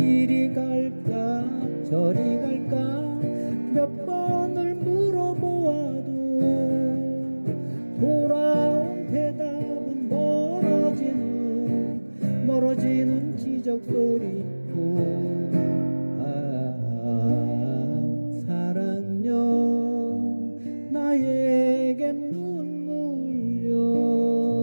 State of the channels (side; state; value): both; inverted; correlation -1.00